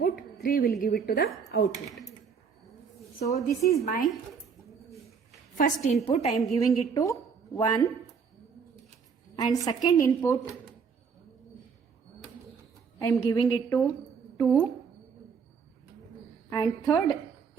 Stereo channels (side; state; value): left; quieter; 6.1 dB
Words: 3 will give it to the output. So this is my first input. I am giving it to 1. And second input, I am giving it to 2. And third